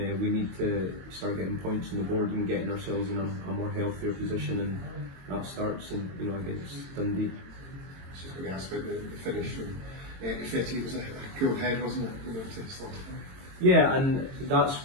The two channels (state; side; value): late; left; 22 ms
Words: need to start getting points on the board and getting ourselves in a more healthier position, and that starts against Dundee. I was just going to ask about the finish from 50. It was a cool head, wasn't it? To slot it. Yeah, and that's